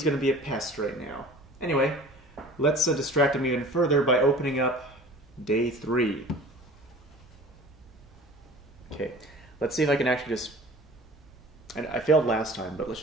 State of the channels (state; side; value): normal; both; correlation 0.44